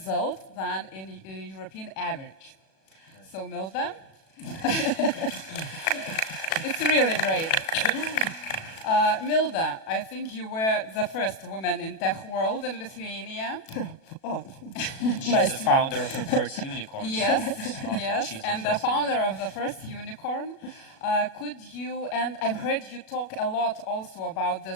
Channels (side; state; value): right; late; 37 ms